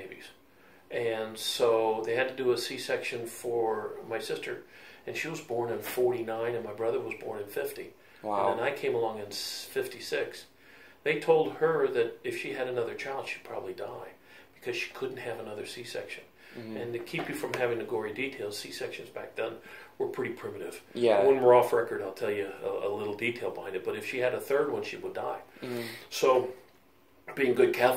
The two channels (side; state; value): both; identical; correlation 1.00